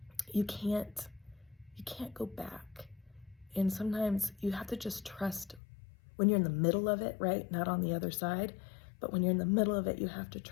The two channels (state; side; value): drops out; right; at 5.6 s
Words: You can't go back. And sometimes you have to just trust when you're in the middle of it, right? Not on the other side, but when you're in the middle of it, you have to